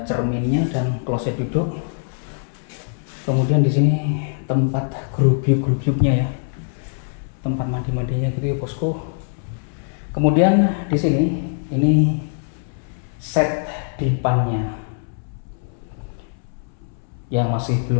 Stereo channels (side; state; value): right; silent; 64 dB below the other